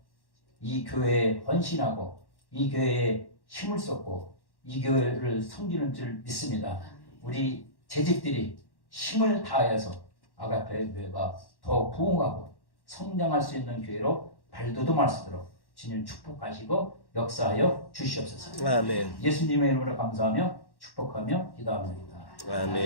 이 교회에 헌신하고 이 교회에 힘을 쏟고 이 교회를 섬기는 줄 믿습니다. 우리 재직들이 힘을 다하여서 아가페 교회가 더 부흥하고 성장할 수 있는 교회로 발돋움할 수 있도록 주님 축복하시고 역사하여 주시옵소서. 아멘. 예수님의 이름으로 감사하며 축복하며 기도합니다.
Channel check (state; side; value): late; right; 1.1 ms